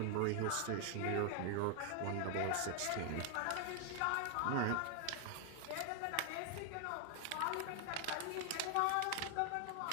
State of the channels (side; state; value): both; different; correlation 0.00